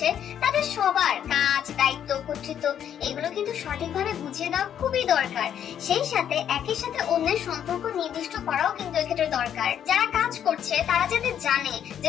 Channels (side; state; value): right; quieter; 9.4 dB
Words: তাদের সবার কাজ, দায়িত্ব, কর্তৃত্ব এগুলো কিন্তু সঠিকভাবে বুঝিয়ে দেওয়া খুবই দরকার। সেই সাথে একের সাথে অন্যের সম্পর্ক নির্দিষ্ট করাও কিন্তু এক্ষেত্রে দরকার। যারা কাজ করছে তারা যাতে জানে